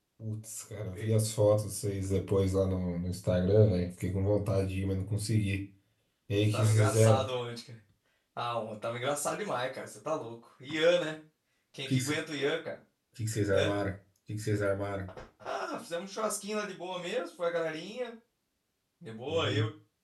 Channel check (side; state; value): both; identical; correlation 1.00